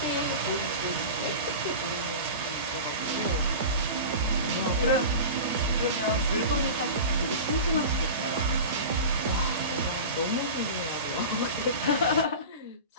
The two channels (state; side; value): inverted; both; correlation -0.31